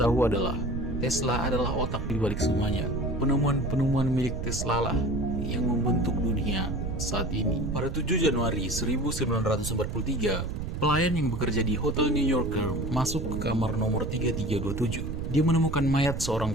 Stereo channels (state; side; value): noise; right; rumble, 4 dB below the sound